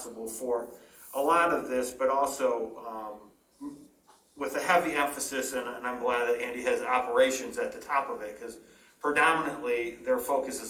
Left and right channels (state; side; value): identical; both; correlation 1.00